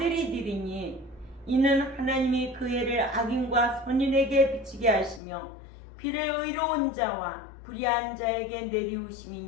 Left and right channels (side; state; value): right; drops out; at 5.2 s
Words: 되리니 이는 하나님이 그 해를 악인과 선인에게 비치게 하시며 비를 의로운 자와 불의한 자에게